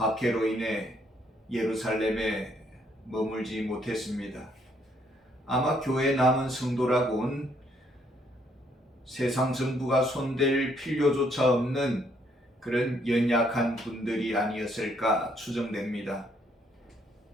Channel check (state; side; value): normal; both; correlation 0.69